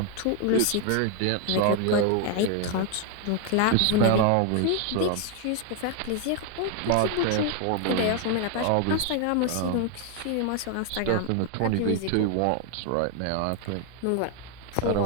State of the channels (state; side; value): different; both; correlation 0.00